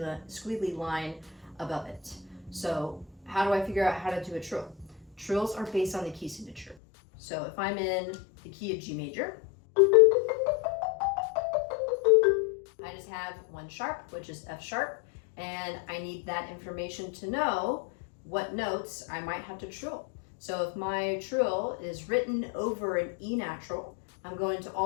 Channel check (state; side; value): drops out; right; at 6.8 s